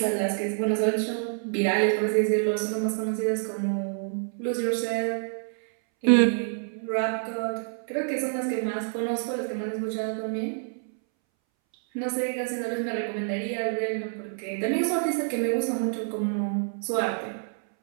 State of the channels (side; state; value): left; silent; 60 dB below the other